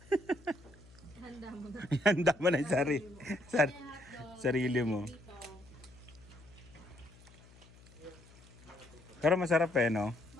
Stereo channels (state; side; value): noise; left; hum, 23 dB below the sound